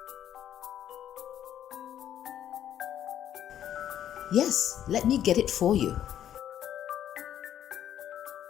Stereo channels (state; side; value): quieter; right; 10.6 dB